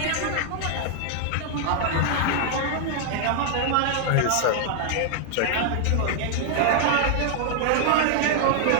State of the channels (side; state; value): both; different; correlation 0.00